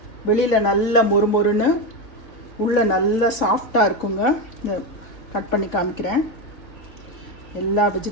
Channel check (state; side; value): late; right; 3.5 ms